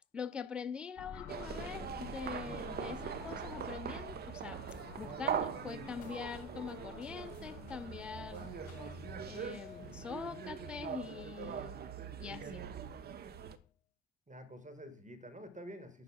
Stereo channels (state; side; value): normal; both; correlation 0.28